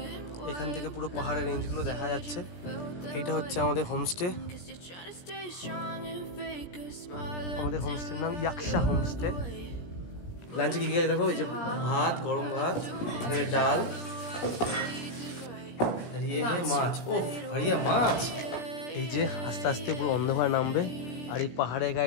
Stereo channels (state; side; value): late; right; 17 ms